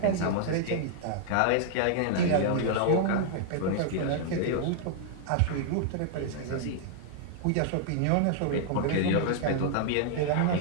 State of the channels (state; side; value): different; both; correlation -0.01